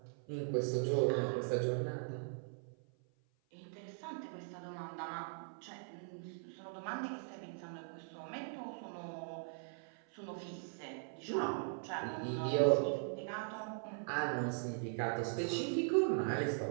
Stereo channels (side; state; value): left; silent; 51 dB below the other